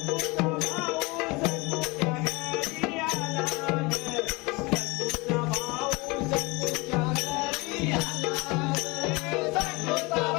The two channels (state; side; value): quieter; right; 25.3 dB